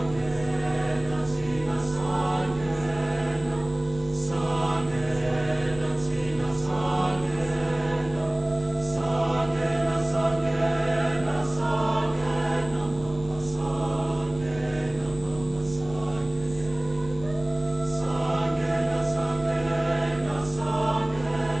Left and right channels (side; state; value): right; noise; rumble, 16 dB below the sound